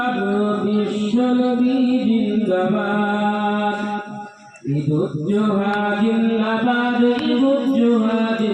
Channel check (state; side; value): identical; both; correlation 1.00